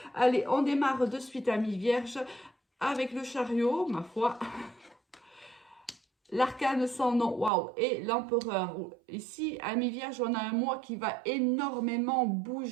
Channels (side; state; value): left; drops out; at 7.5 s